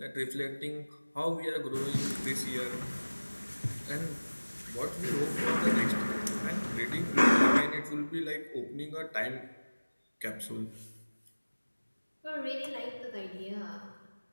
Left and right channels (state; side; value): inverted; both; correlation -1.00